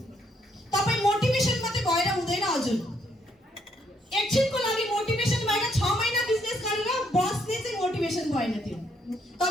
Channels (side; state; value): both; normal; correlation 0.72